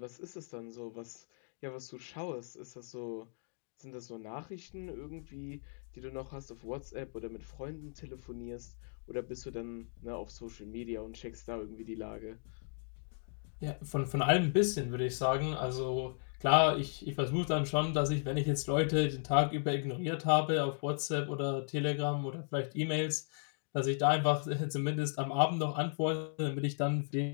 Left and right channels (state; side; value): silent; right; digital silence